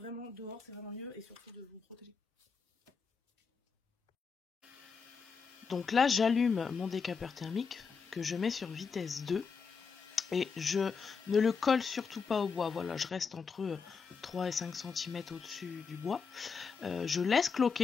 dehors, c'est vraiment mieux et surtout de vous protéger. Donc là j'allume mon décapeur thermique que je mets sur vitesse 2. Et je ne le colle surtout pas au bois, voilà, je reste entre 3 et 5 cm au-dessus du bois. Je laisse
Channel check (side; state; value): right; quieter; 5.5 dB